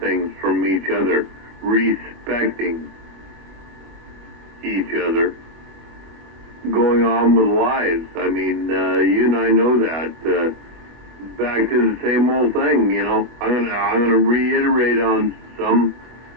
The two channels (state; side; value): late; left; 24 ms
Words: from each other, respecting each other, going on with lives. I mean, you and I know that. Back to the same old thing, you know. I'm gonna reiterate on some,